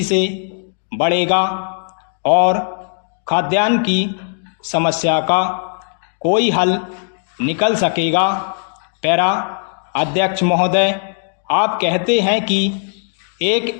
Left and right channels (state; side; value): silent; right; digital silence